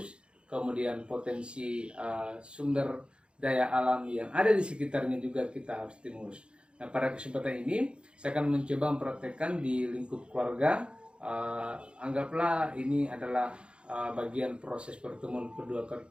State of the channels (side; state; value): left; late; 0.055 ms